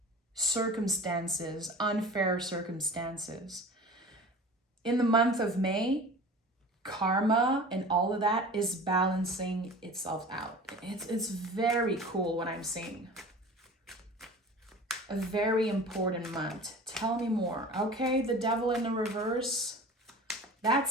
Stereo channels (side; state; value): both; normal; correlation 0.39